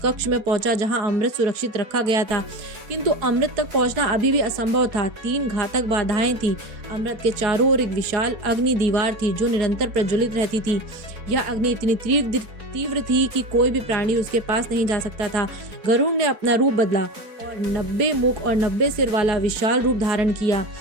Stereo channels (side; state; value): left; late; 4.8 ms